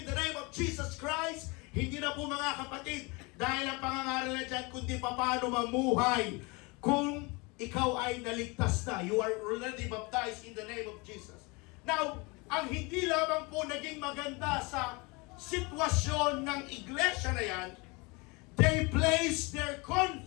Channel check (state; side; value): quieter; right; 27.4 dB